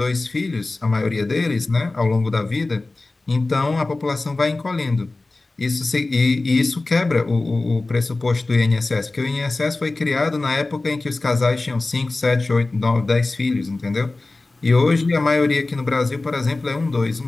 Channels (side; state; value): right; quieter; 3.2 dB